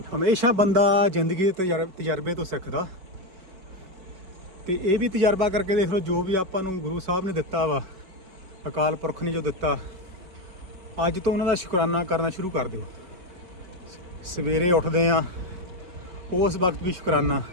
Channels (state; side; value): late; left; 5.3 ms